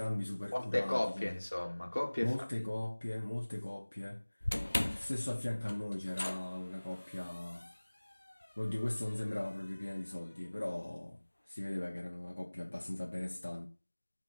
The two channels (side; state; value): both; inverted; correlation -1.00